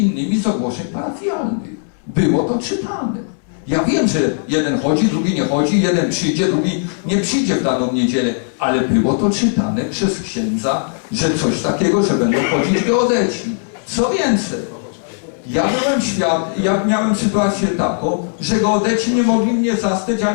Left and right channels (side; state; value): right; silent; 68 dB below the other